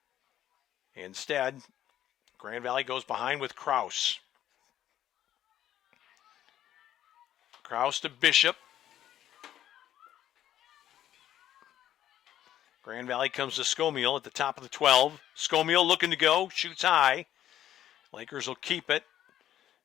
Instead, Grand Valley goes behind with Kraus. Kraus to Bishop. Grand Valley comes to Scomiel at the top of the 12. Scomiel looking to go, shoots high. Lakers will keep it.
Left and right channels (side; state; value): right; quieter; 11.7 dB